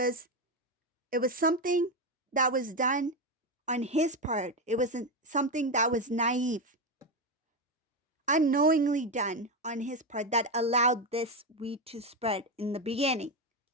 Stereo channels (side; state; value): both; normal; correlation 0.12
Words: something that was done on his part. It wasn't something that was naive, unknowingly done on his part that allowed this weed to spread in the beginning.